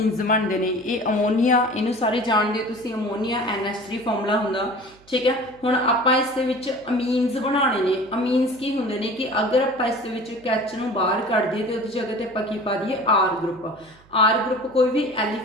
बनते हैं ये अमोनीआ इनू सारे जानते हो तुसीं अमोनीआ NH3 फॉर्मूला हुंदा ठीक है। हुण आपां इस दे विच अमीन्स बनाने ने अमीन्स की हुंदे ने कि अगर आपां इस दे विच H नूं बाहर कढ दईए तो उहदी जगह ते आपां की पा दईए R ग्रुप कोई भी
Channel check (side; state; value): right; noise; hum, 28 dB below the sound